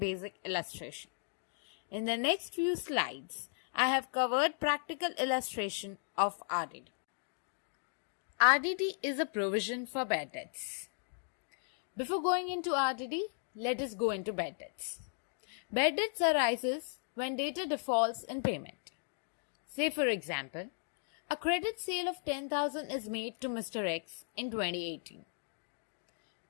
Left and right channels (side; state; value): right; silent; 54 dB below the other